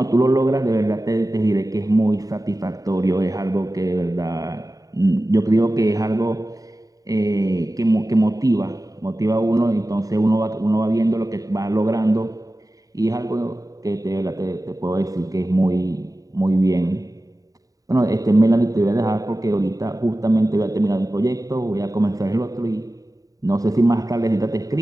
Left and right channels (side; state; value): left; late; 0.17 ms